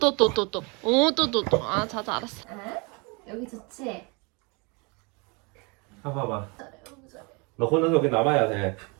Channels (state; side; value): quieter; left; 30.2 dB